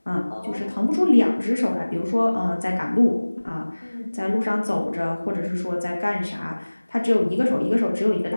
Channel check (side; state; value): both; inverted; correlation -1.00